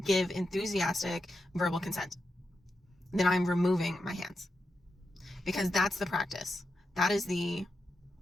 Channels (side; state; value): both; normal; correlation 0.87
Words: give enthusiastic verbal consent. Then I'm removing my hands, because that's the practice. That is the